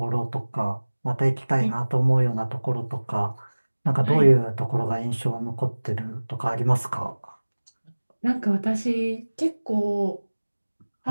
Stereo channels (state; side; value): inverted; both; correlation -1.00